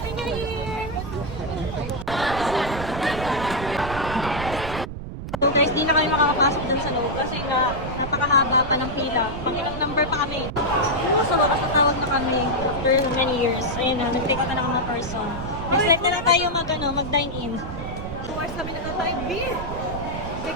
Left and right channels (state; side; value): noise; right; rumble, 8 dB below the sound